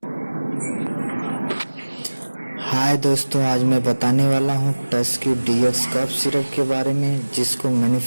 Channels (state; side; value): inverted; both; correlation -1.00